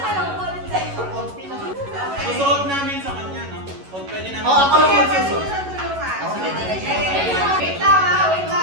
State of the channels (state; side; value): late; left; 11 ms